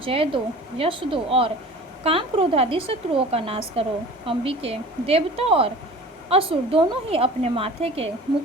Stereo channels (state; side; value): normal; both; correlation 0.41